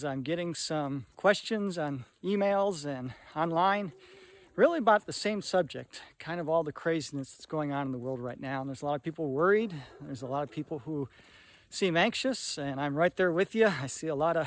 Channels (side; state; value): both; identical; correlation 1.00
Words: I'm getting some questions on emails and online really about the same subject, kind of all the craziness that's going on in the world right now. And there's a lot of people worried. There's a lot of people who seem anxious, and I'm right there with you. I see a lot